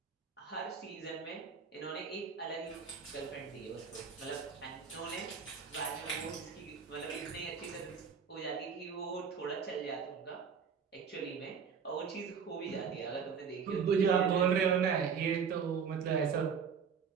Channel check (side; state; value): left; quieter; 6.5 dB